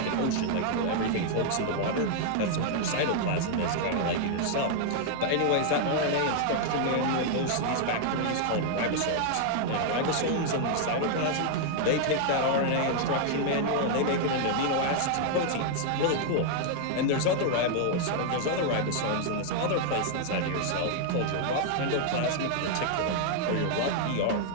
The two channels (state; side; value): different; both; correlation 0.00